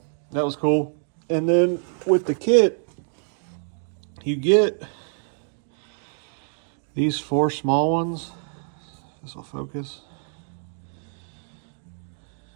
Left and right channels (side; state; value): left; silent; 61 dB below the other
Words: that was cool. And then with the kit, you get these 4 small ones. This will focus.